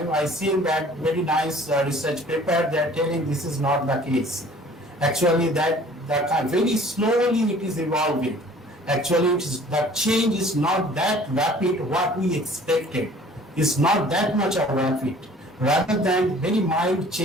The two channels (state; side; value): normal; both; correlation 0.51